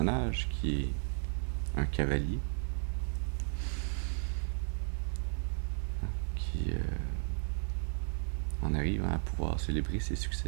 qui est un cavalier, hein? Qui en arrive à pouvoir célébrer ses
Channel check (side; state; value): left; silent; digital silence